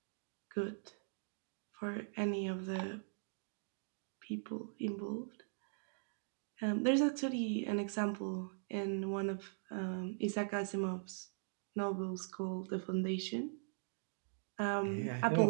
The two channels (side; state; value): left; silent; digital silence